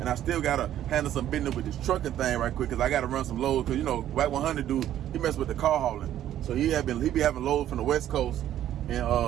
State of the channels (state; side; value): quieter; left; 11.7 dB